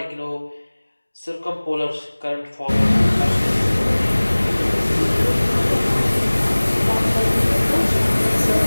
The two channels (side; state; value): both; inverted; correlation -1.00